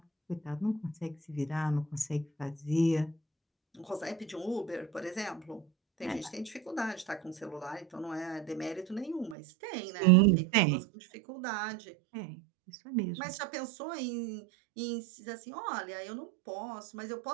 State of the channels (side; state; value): left; drops out; at 9.3 s